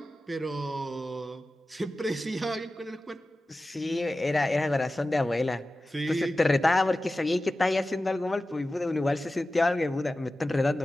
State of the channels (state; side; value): normal; both; correlation 0.95